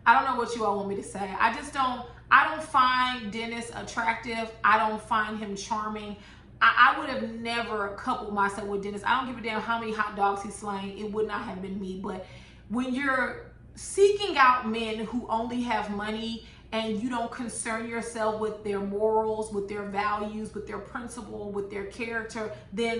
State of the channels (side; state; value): both; identical; correlation 1.00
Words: you all want me to say. I don't find Dennis attractive. I don't find him charming. I would have never coupled myself with Dennis. I don't give a damn how many hot dogs he's slaying. It would not have been me. But when you're seeking out men who only have money and you don't concern yourself with their morals, with their values, with their principle, with their character,